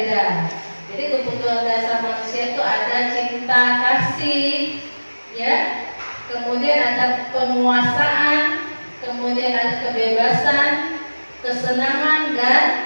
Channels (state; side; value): inverted; both; correlation -1.00